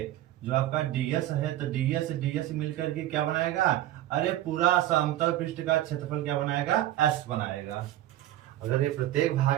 जो आपका डीएस है, तो डीएस डीएस मिल करके क्या बनाएगा, अरे पूरा समतल पृष्ठ का क्षेत्रफल क्या बनाएगा, एस बनाएगा। अगर ये प्रत्येक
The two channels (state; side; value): quieter; left; 13.8 dB